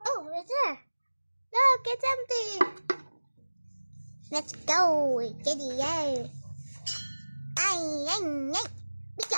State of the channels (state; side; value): inverted; both; correlation -1.00